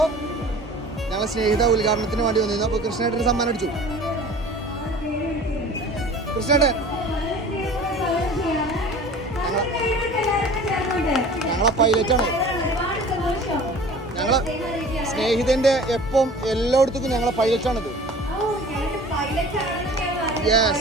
ഞങ്ങളെ സ്നേഹിത ഉദ്ഘാടനത്തിന് വേണ്ടി വന്നിരുന്നു. അപ്പോൾ കൃഷ്ണേട്ടന് സമ്മാനം അടിച്ചു. കൃഷ്ണേട്ടൻ ഞങ്ങളെ പൈലറ്റാണ്. ഞങ്ങളെ സ്നേഹിതന്റെ എപ്പം എല്ലായിടത്തും ഞങ്ങളെ പൈലറ്റാണിത്.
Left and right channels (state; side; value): normal; both; correlation 0.43